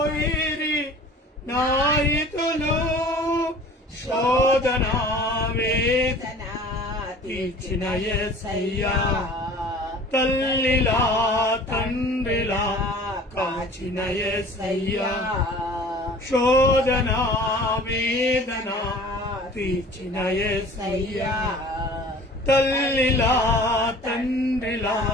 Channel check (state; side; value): normal; both; correlation 0.45